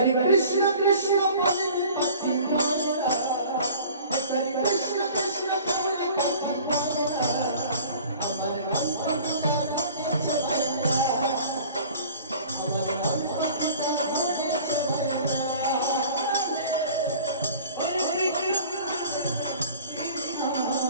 কৃষ্ণ কৃষ্ণ বলে পাখি মরে না, একবারই কৃষ্ণ কৃষ্ণ বলে পাখি মরে না, আমার অন্তরটা ধরেছে ভাইরা, আমার অন্তরটা ধরেছে ভাইরা।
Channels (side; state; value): both; inverted; correlation -0.45